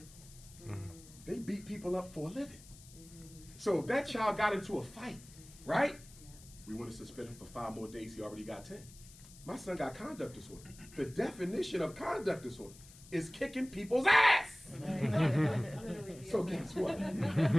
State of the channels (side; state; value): left; noise; hiss, 20 dB below the sound